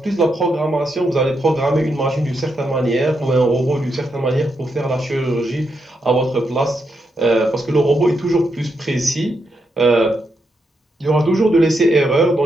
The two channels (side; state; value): both; normal; correlation 0.82